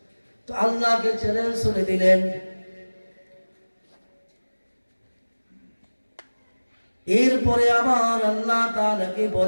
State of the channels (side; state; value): both; inverted; correlation -1.00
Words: তো আল্লাহকে চ্যালেঞ্জ করে দিলেন। এরপরে আবার আল্লাহ তাআলাকে